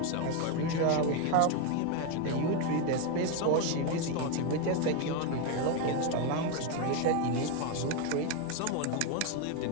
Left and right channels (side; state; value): both; different; correlation 0.02